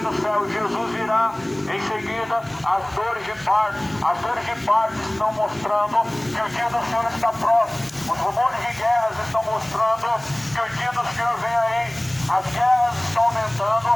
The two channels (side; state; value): left; noise; hiss, 28 dB below the sound